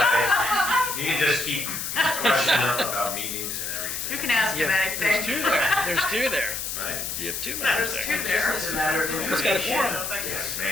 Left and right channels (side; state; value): left; noise; hiss, 4 dB below the sound